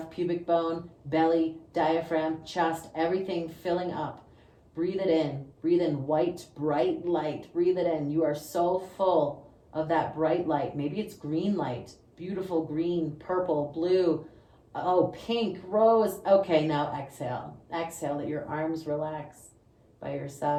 pubic bone, belly, diaphragm, chest, everything filling up. Breathe it in. Breathe in white, bright light. Breathe it in. You are so full of that bright light. Maybe it's green light. Beautiful green, purple, blue, pink, rose. Okay, now exhale. Exhale, let your arms relax by your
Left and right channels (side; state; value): both; identical; correlation 1.00